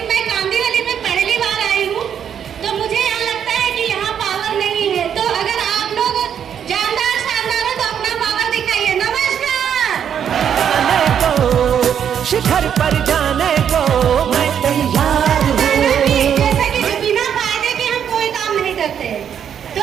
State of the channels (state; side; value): quieter; left; 8.6 dB